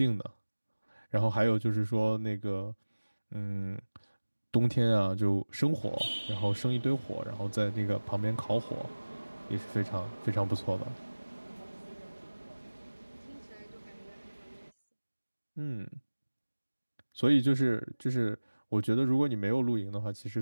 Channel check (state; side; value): inverted; both; correlation -1.00